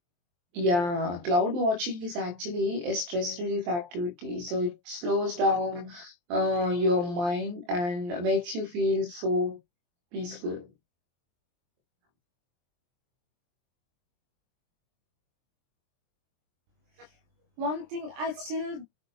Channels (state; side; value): late; left; 23 ms